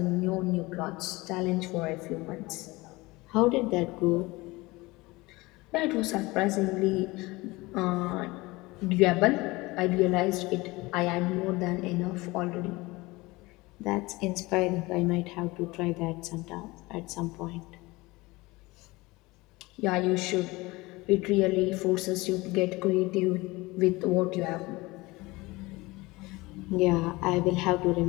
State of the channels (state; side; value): quieter; right; 21.9 dB